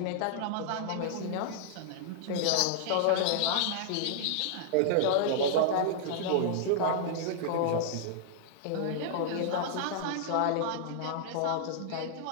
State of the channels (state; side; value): different; both; correlation -0.01